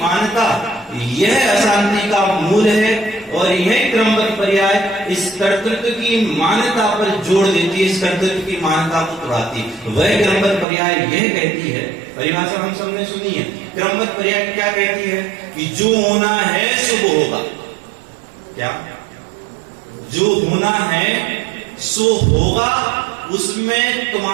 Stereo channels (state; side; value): drops out; left; at 10.7 s